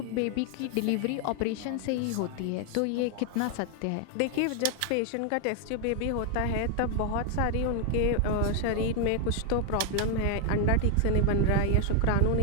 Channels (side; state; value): both; different; correlation 0.00